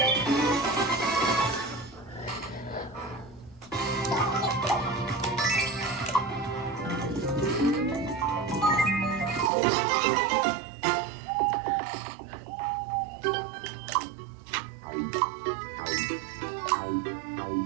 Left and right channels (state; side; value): drops out; left; at 9.5 s